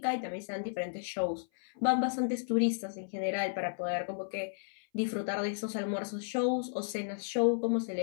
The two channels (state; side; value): silent; right; 55 dB below the other